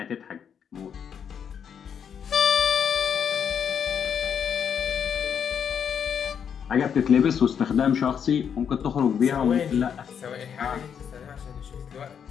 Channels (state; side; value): quieter; right; 7.7 dB